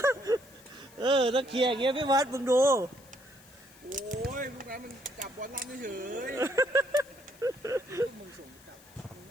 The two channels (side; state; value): left; noise; hiss, 24 dB below the sound